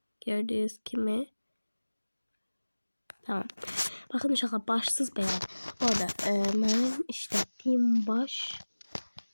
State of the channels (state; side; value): inverted; both; correlation -1.00